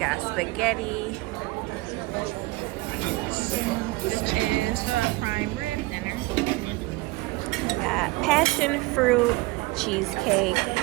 spaghetti. This is the prime rib dinner. Got passion fruit cheesecake,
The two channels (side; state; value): left; quieter; 21.9 dB